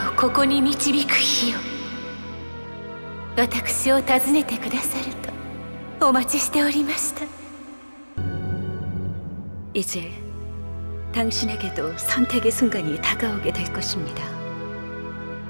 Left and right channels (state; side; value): inverted; both; correlation -1.00